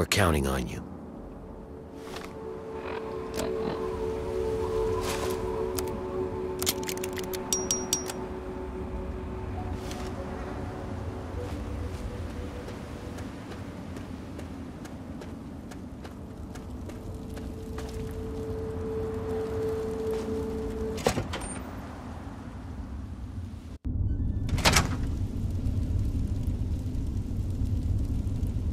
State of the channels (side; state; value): both; identical; correlation 1.00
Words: counting on you.